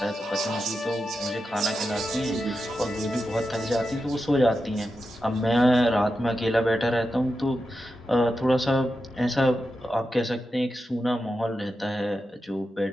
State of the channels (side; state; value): both; normal; correlation 0.89